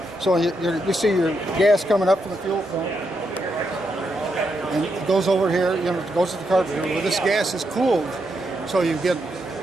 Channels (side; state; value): both; normal; correlation 0.82